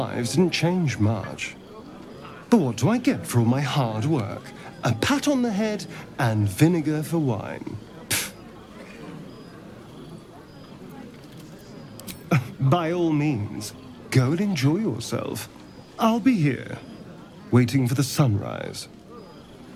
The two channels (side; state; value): both; identical; correlation 1.00